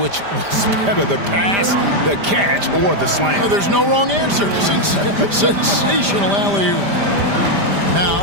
was better, the pass, the catch, or the slam. Oh, there's no wrong answer. Sensational alley-oop.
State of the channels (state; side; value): late; left; 5.0 ms